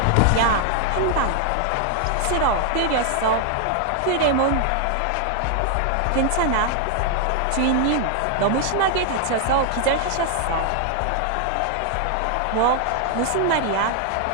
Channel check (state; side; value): different; both; correlation 0.00